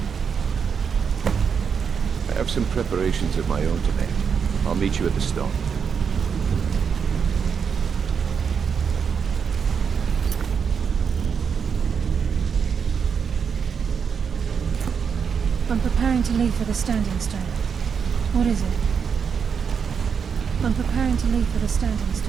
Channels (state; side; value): quieter; left; 6.6 dB